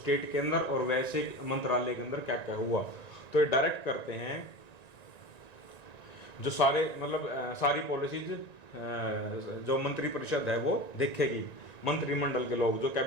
के अंदर और वैसे मंत्रालय के अंदर क्या क्या हुआ। तो ये डायरेक्ट करते हैं, जो सारे मतलब सारी पॉलिसीज जो मंत्री परिषद है वो देखेगी, मंत्रिमंडल के लोग जो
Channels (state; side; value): late; right; 1.9 ms